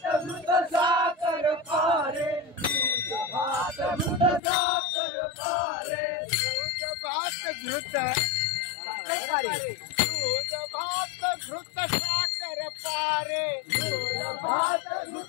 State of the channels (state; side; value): drops out; right; at 4.4 s